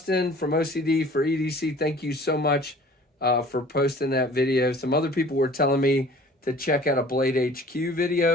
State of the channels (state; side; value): normal; both; correlation 0.48